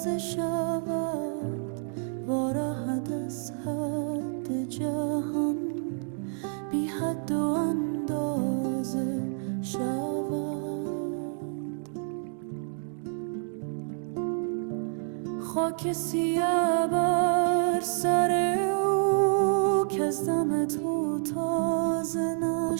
شود، وارهد از حد جهان بی حد و اندازه شود. خاک سیه بر سر او که از دم تو تازه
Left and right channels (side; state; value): left; silent; 59 dB below the other